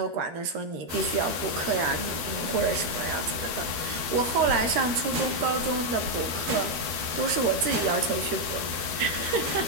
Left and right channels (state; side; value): late; left; 13 ms